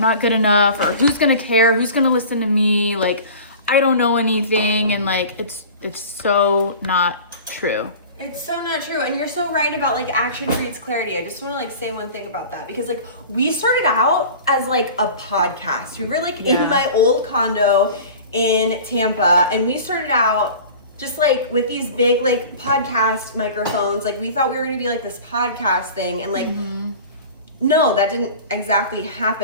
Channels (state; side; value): inverted; both; correlation -0.39